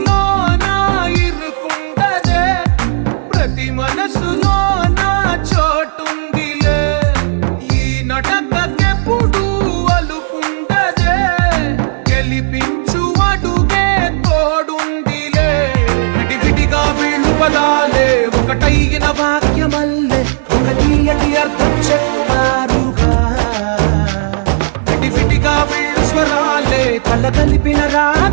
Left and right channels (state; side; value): silent; left; digital silence